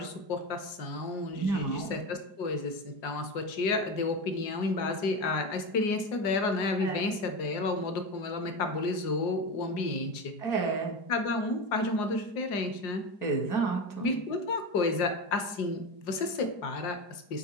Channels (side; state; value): right; late; 4.9 ms